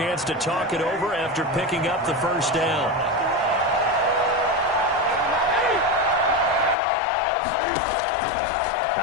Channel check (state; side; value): drops out; right; at 6.8 s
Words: to talk it over after picking up the 1st down.